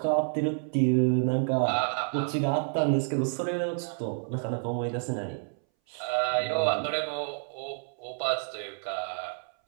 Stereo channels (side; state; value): left; silent; 59 dB below the other